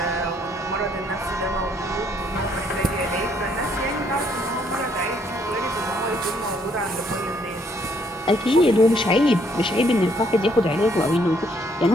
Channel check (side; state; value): both; normal; correlation 0.68